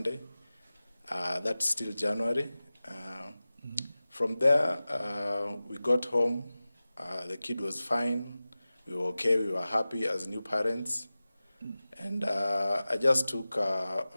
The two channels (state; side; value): inverted; both; correlation -0.96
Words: That's still January. From there, we got home. The kid was fine. We were okay. We were happy as new parents. And I just took a